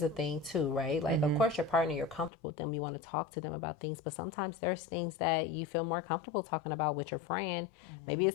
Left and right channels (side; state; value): right; drops out; at 2.3 s